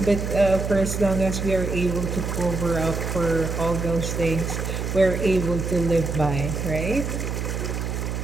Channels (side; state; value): right; noise; hum, 3 dB below the sound